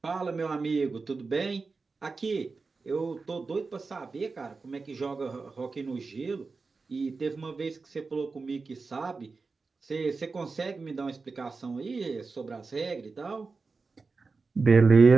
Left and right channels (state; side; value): quieter; left; 4.3 dB